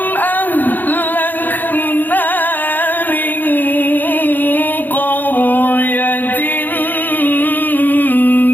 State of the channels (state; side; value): late; right; 0.088 ms